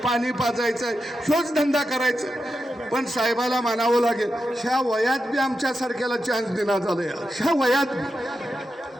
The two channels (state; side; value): normal; both; correlation 0.88